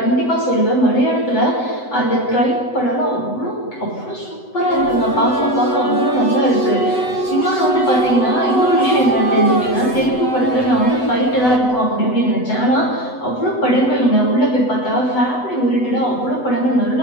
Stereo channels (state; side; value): late; right; 8.0 ms